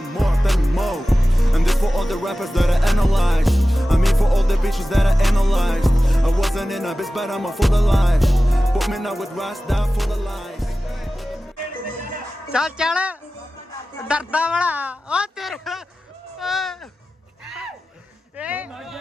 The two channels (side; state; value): both; normal; correlation 0.95